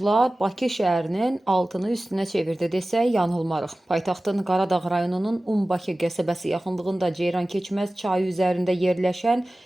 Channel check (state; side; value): normal; both; correlation 0.97